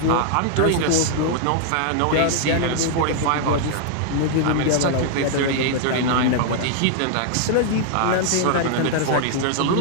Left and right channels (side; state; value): both; different; correlation -0.01